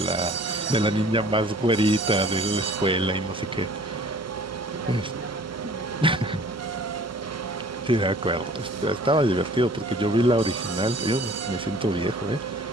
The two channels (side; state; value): both; normal; correlation 0.51